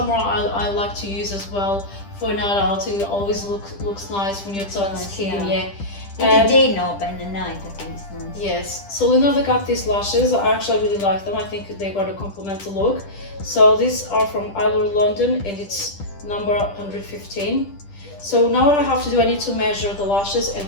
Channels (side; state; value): right; late; 10 ms